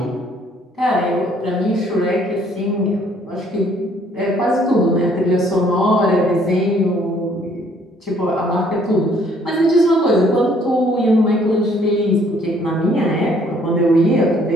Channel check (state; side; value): normal; both; correlation 0.63